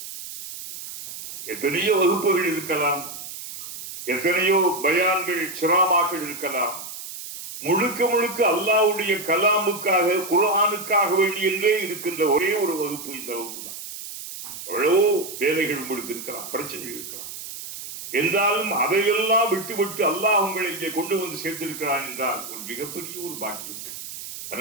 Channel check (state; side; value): noise; right; hiss, 10 dB below the sound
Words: எத்தனையோ வகுப்புகள் இருக்கலாம், எத்தனையோ பயான்கள் சிராமாக்கள் இருக்கலாம். முழுக்க முழுக்க அல்லாஹ்வுடைய கலாமுக்காக, குர்ஆனுக்காக வேண்டி என்றே இருக்கின்ற ஒரே ஒரு வகுப்பு இந்த வகுப்பு தான். எவ்வளவோ வேலைகள் உங்களுக்கு இருக்கலாம், பிரச்சனைகள் இருக்கலாம். என்றாலும் அதையெல்லாம் விட்டு அல்லாஹ் உங்களை இங்கே கொண்டு வந்து சேர்த்திருக்கிறான் என்றால் ஒரு மிகப்பெரிய ஒரு பாக்கியம்.